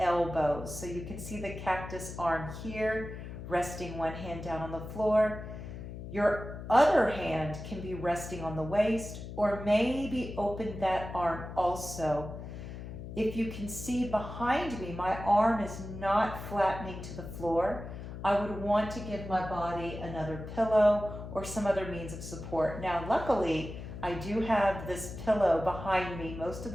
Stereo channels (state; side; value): noise; left; hum, 10 dB below the sound